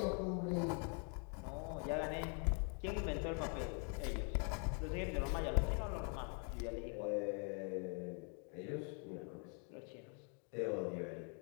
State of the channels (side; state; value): right; quieter; 39.7 dB